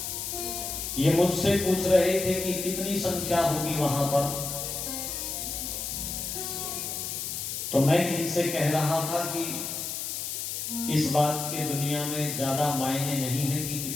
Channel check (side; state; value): left; noise; hiss, 4 dB below the sound